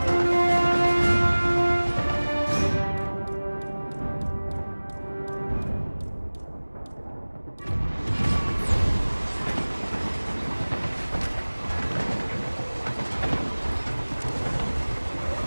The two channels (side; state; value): both; inverted; correlation -1.00